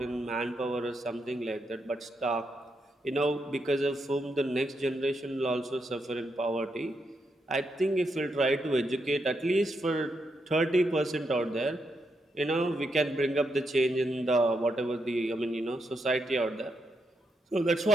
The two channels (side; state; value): both; normal; correlation 0.82